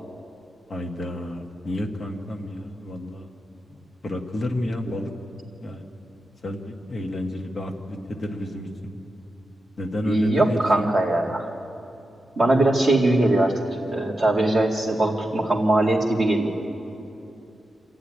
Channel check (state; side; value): normal; both; correlation 0.89